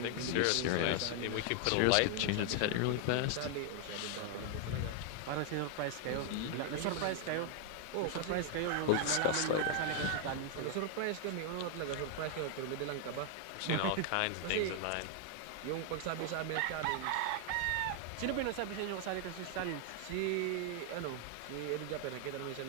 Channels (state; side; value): different; both; correlation 0.00